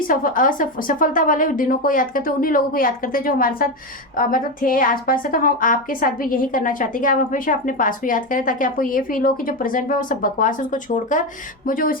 वाले दिनों को याद करते हैं, उन्हीं लोगों को याद करते हैं जो हमारे साथ मतलब थे आसपास से। तो हम आपके साथ भी यही करना चाहते हैं कि आप हमेशा अपने पास्ट को याद करें, ताकि आपको ये फील हो कि जो प्रेजेंट में वो सब बकवास है उसको छोड़कर मुझे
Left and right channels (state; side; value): normal; both; correlation 0.14